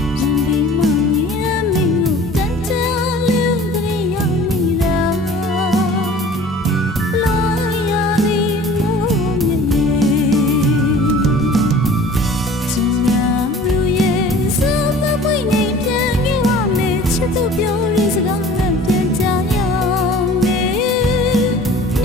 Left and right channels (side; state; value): both; normal; correlation 0.46